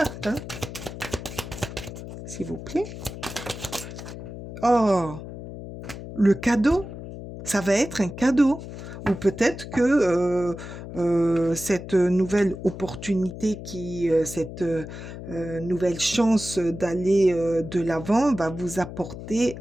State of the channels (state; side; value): noise; left; hum, 11 dB below the sound